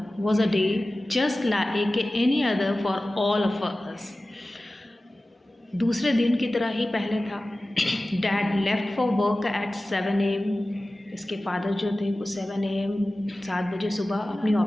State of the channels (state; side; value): normal; both; correlation 0.96